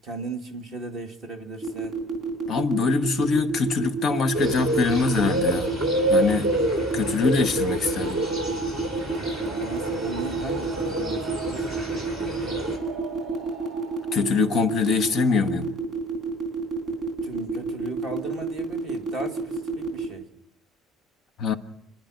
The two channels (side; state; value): both; normal; correlation 0.50